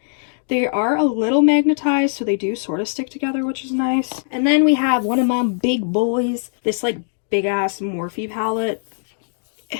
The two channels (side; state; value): right; silent; digital silence